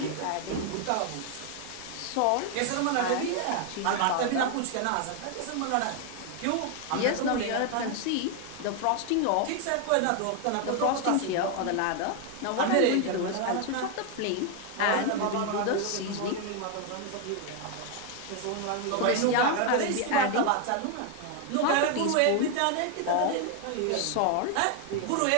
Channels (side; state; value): both; different; correlation 0.01